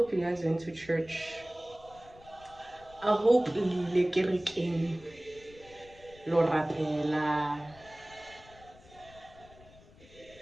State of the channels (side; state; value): left; noise; rumble, 23 dB below the sound